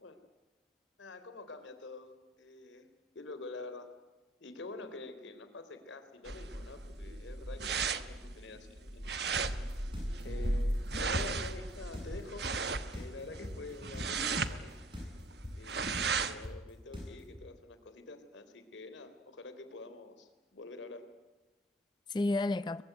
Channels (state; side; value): normal; both; correlation 0.55